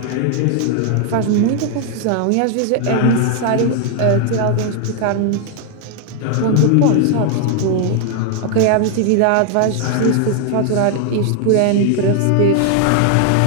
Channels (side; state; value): both; different; correlation 0.00